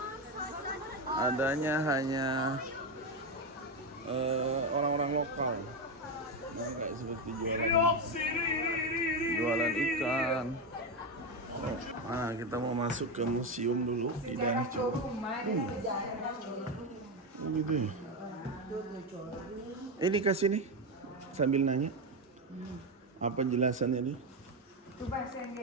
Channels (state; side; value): normal; both; correlation 0.12